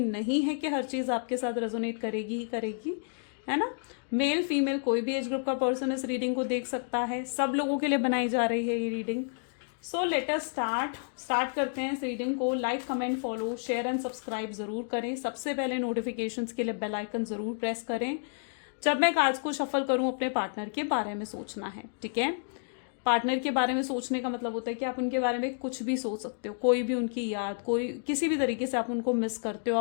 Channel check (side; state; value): right; silent; digital silence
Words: नहीं है कि हर चीज़ आपके साथ रेजोनेट करेगी ही करेगी, है ना। मेल फीमेल कोई भी एज ग्रुप का पर्सन इस रीडिंग को देख सकता है। सब लोगों के लिए बनाई जा रही है ये reading. So let us start करते हैं इस रीडिंग को। Like, comment, follow, share and subscribe जरूर करें। सबसे पहले नोटिफिकेशंस के लिए बेल आइकन जरूर प्रेस करें। जब मैं कार्ड्स को शफल करूं अपने पार्टनर के बारे में सोचना है, ठीक है। पार्टनर के बारे में सोचने का मतलब होता है कि आप उनके बारे में कुछ भी सोच सकते हो, कोई भी उनकी याद, कोई किसी भी तरीके से आप उनको मिस करते हो,